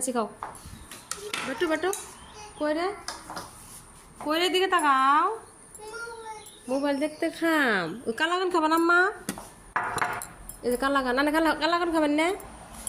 খাও। বেটু বেটু কইরে দিকে তাকাও। মোবাইল দেখতে খাম। ওই কালাগান খাবেন আম্মা? এই যে কালাগান, না কালাগান খাবেন না?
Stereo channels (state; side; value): identical; both; correlation 1.00